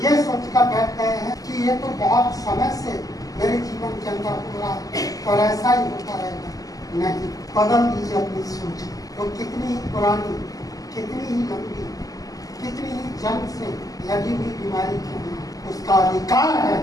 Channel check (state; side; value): late; right; 0.17 ms